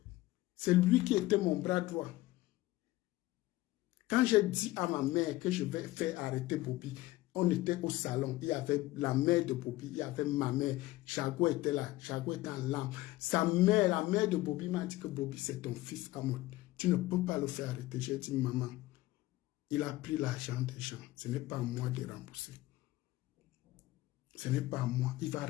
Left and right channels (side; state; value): right; quieter; 17.9 dB